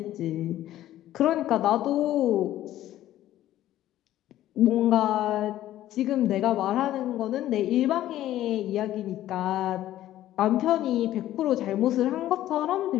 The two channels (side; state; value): right; quieter; 13.5 dB